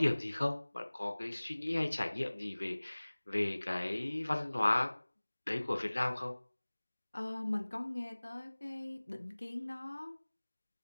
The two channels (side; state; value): both; inverted; correlation -1.00